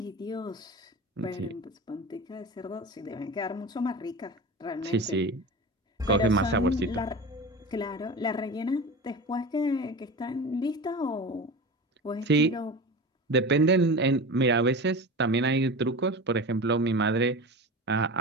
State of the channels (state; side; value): normal; both; correlation 0.30